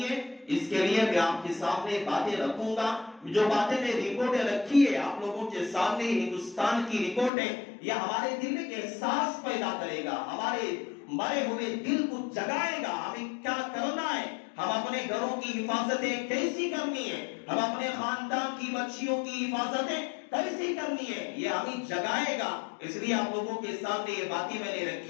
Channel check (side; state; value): right; drops out; at 7.3 s